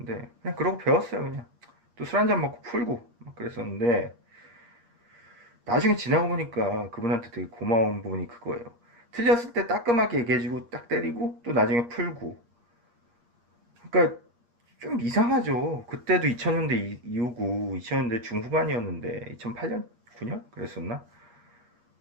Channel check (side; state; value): left; late; 8.6 ms